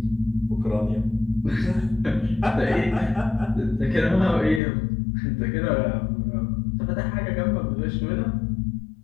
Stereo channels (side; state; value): right; drops out; at 4.6 s